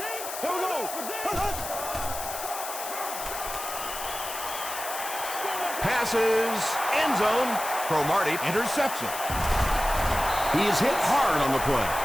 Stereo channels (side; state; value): left; noise; hiss, 8 dB below the sound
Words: Passes, end zone. Cromartie, interception. He is hit hard on the play.